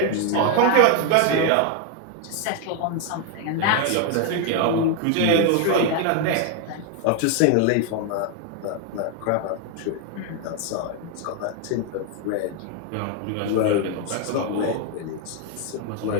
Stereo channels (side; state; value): both; different; correlation 0.01